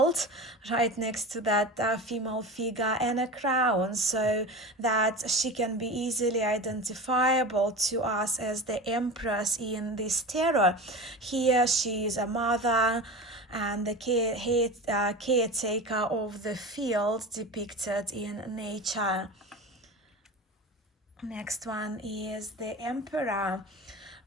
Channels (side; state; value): both; normal; correlation 0.30